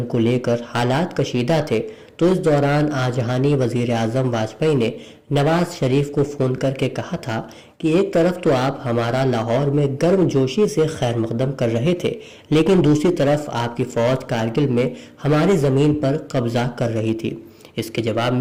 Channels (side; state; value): both; identical; correlation 1.00